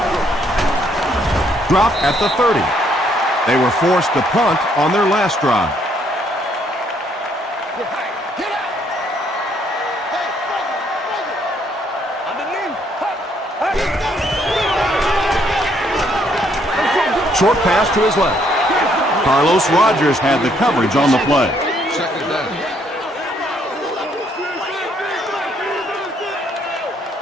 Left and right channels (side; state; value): both; normal; correlation 0.69